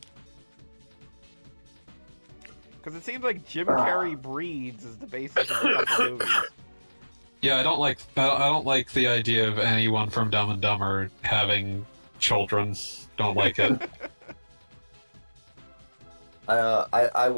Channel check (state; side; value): inverted; both; correlation -1.00